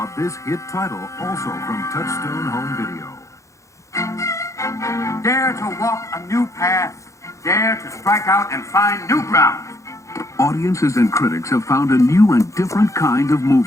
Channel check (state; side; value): late; right; 0.15 ms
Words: this hit title, also from Touchstone Home Video. Dare to walk a new path. Dare to strike out and find new ground. Audiences and critics have found a new and different kind of